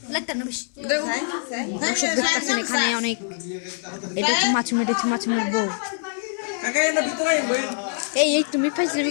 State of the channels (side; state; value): right; silent; 56 dB below the other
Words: লাগতেন না বেশি Đây. দর্শক দেখতেছেন এখানে অনেক এটা হচ্ছে মাছ মেটেছে মাছ মেটবো Kakak yang lebih tua yang main. এই তুমি পাইছিলাম